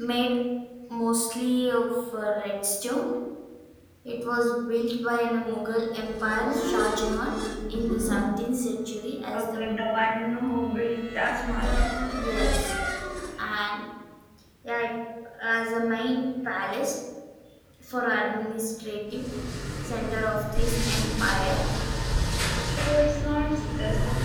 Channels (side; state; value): both; identical; correlation 1.00